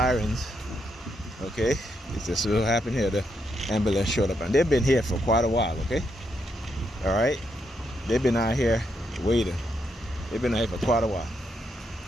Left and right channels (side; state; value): both; normal; correlation 0.79